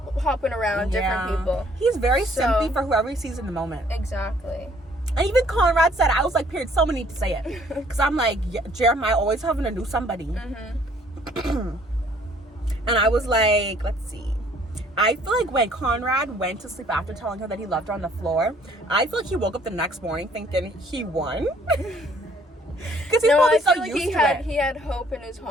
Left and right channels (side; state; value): both; normal; correlation 0.61